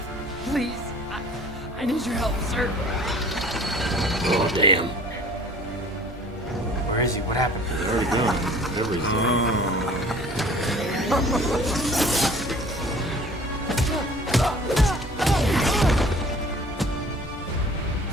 Please, I need your help, sir. Oh, damn. Where is he? What happened? He's already gone. Whatever he's doing.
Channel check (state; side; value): normal; both; correlation 0.49